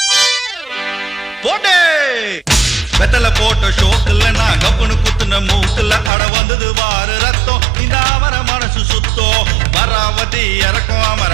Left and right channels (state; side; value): drops out; left; at 6.1 s